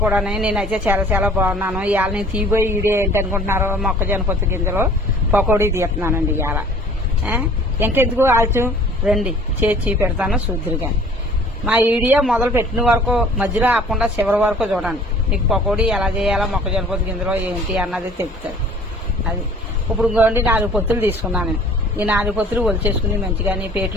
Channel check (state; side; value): normal; both; correlation 0.51